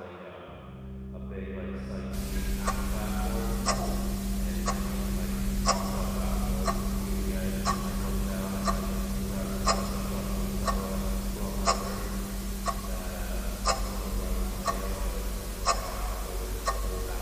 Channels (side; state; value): both; identical; correlation 1.00